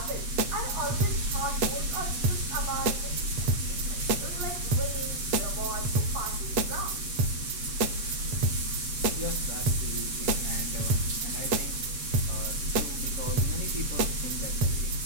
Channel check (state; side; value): late; left; 7.9 ms